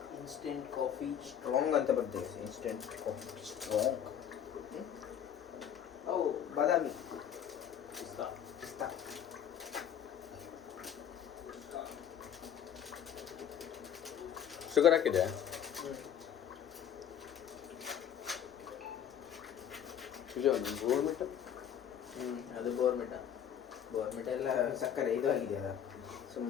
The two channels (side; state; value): right; quieter; 9.1 dB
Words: instant coffee strong ಅಂತ ಬರ್ತದೆ. Instant coffee strong. ಅವು ಬಾದಾಮಿ ಪಿಸ್ತಾ. ಶುಗರ್ ಹಾಕಿದೆ. ಅದು ಬೋರ್ಮಿಟ. ಬೋರ್ಮಿಟ ಎಲ್ಲ ಸಕ್ಕರೆ ಇದು ಆಗಿದೆಯಲ್ಲ,